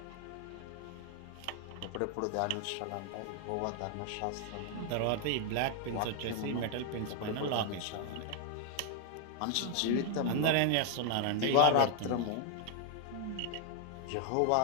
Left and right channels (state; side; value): different; both; correlation 0.00